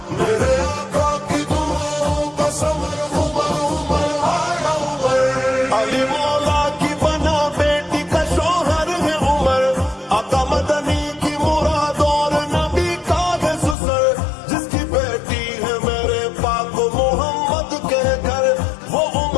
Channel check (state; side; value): drops out; right; at 13.8 s